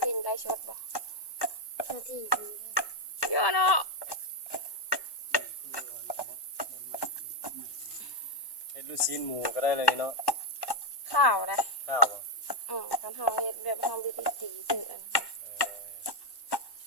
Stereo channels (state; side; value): late; right; 1.1 ms